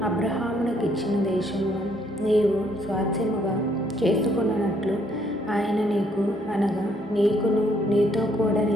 అబ్రహామునకు ఇచ్చిన దేశమును నీవు స్వాస్థ్యముగా చేసుకొనున్నట్లు ఆయన నీకు అనగా నీకును నీతో కూడా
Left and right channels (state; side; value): normal; both; correlation 0.68